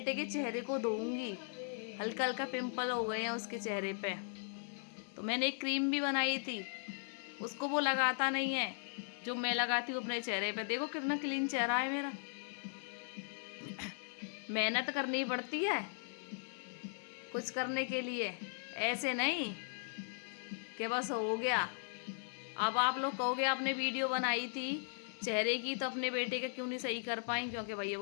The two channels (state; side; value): silent; right; 52 dB below the other